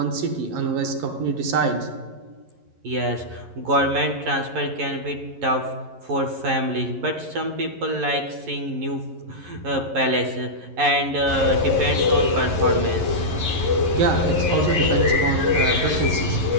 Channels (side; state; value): left; late; 11 ms